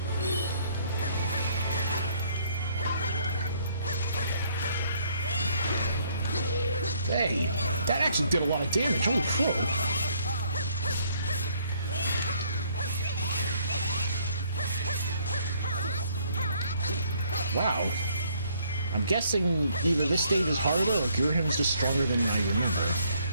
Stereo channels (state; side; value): inverted; both; correlation -0.65